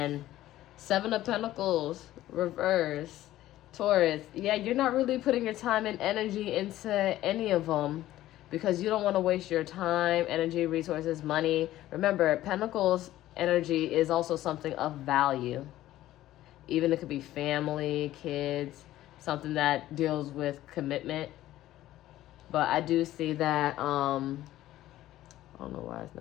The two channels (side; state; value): right; quieter; 14.5 dB